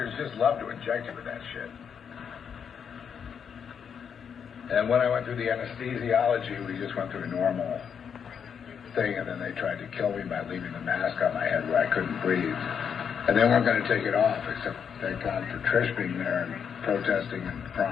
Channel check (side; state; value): right; quieter; 7.3 dB